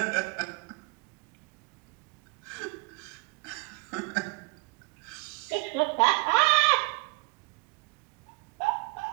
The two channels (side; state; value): left; quieter; 30.6 dB